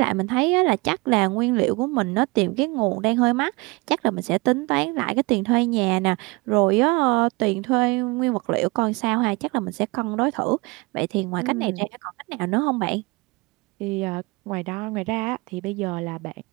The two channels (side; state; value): left; quieter; 26.0 dB